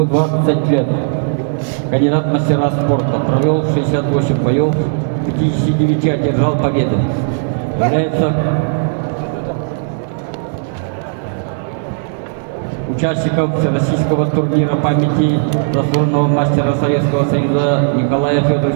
20 лет. Кандидат в мастера спорта. Провел 68 боев, 59 одержал победы. Является участником всероссийского турнира памяти заслуженного мастера Советского Союза Николая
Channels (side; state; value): left; silent; 63 dB below the other